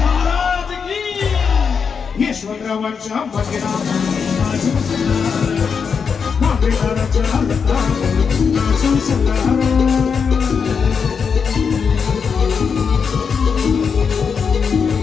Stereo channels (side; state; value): right; quieter; 6.1 dB